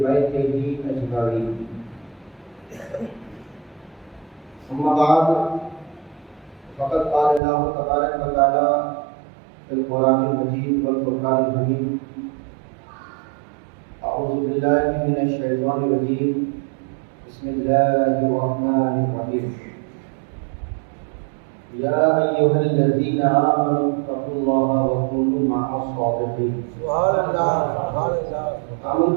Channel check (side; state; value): left; drops out; at 7.4 s